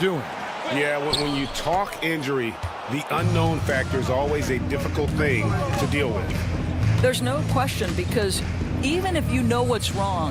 Yeah, when you talk injury, the unknown factor is always a difficult thing to deal with. There's no question, because even if you know what's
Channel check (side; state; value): both; identical; correlation 1.00